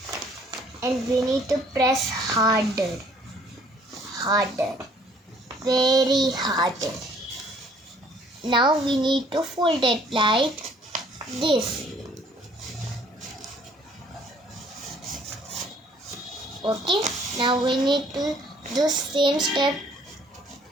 And we need to press harder, very harder. Now we need to fold it like this. Okay, now we need to do same step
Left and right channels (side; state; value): both; normal; correlation 0.59